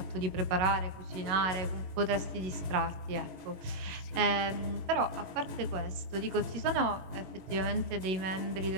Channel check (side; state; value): left; late; 22 ms